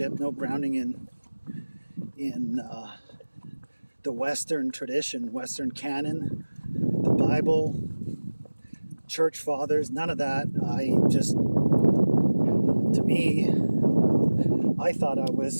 no grounding in the Western tradition, Western canon, the Bible, church fathers, none of that. I thought I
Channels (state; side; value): inverted; both; correlation -1.00